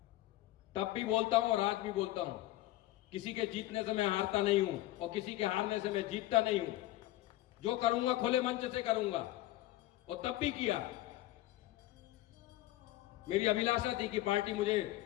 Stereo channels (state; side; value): quieter; right; 15.9 dB